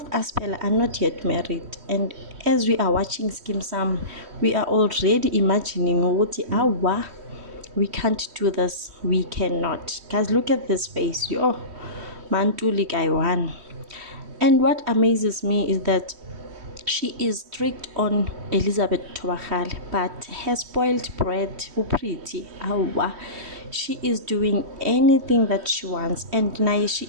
us Pella are not yet married, and as we are watching Skeem Sam, we are already imagining awa, we can't do this, we cannot. Guys, look at this face. Mantuli guy one. And what amazes me is that she is strict on Elizabeth Thobakgale, but her spoiled brat, Upriti, awa, she is doing anything that she wants, and now she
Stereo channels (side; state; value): left; late; 3.1 ms